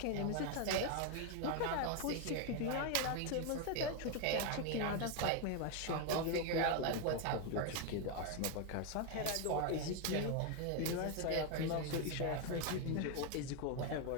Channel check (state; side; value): different; both; correlation 0.01